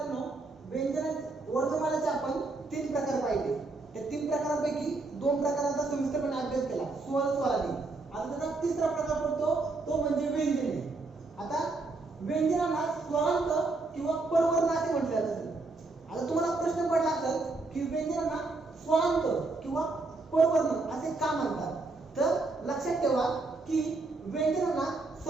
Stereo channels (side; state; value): left; quieter; 3.5 dB